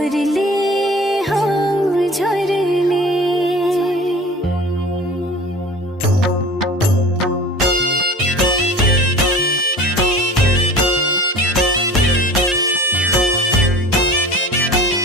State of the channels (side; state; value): both; normal; correlation 0.41